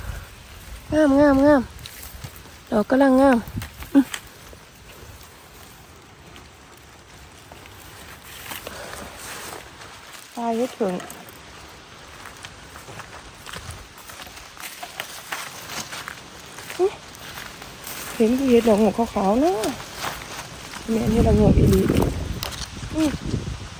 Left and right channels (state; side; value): identical; both; correlation 1.00